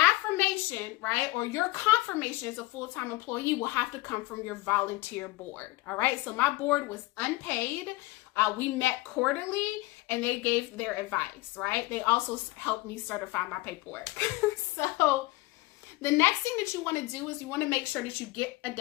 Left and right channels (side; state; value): right; quieter; 20.8 dB